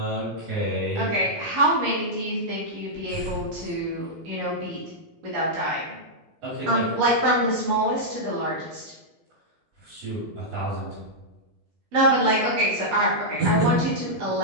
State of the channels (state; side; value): late; left; 14 ms